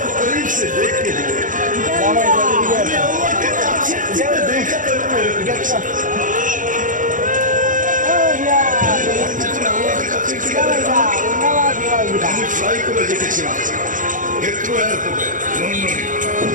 को करीब से देख के दिए, मैं अल्लाह के काछे से देखा तो मेरे আমি ফ্লাই করে দেখেছিলাম হেথ্রো এয়ারপোর্টে লন্ডনে।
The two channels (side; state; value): left; late; 0.38 ms